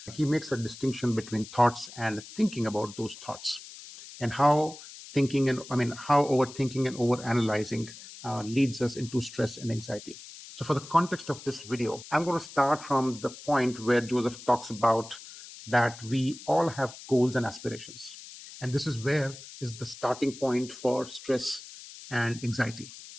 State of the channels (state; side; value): noise; left; hiss, 15 dB below the sound